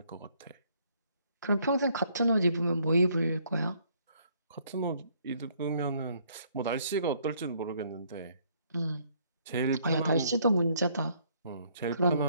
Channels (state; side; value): inverted; both; correlation -0.66